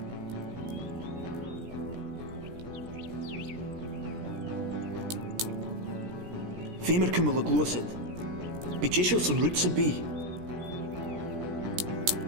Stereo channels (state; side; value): late; left; 17 ms